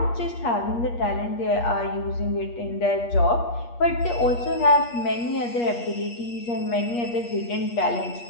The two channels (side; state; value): right; late; 8.4 ms